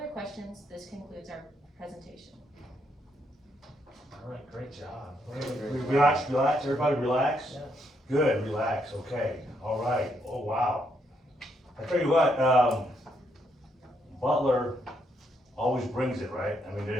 questions, this concludes our presentation. All right, great job. Relax, everybody relax? Yeah. Good, relax, okay, all right, oh, wow. I tell you what, Butler always brings it, right? I mean,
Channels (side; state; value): both; normal; correlation 0.76